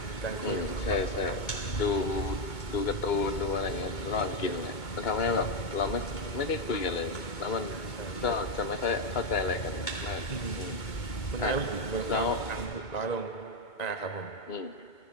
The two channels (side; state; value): right; late; 2.2 ms